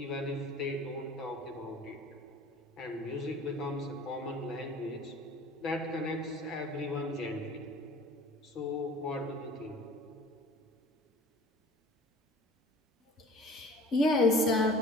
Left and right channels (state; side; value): normal; both; correlation 0.47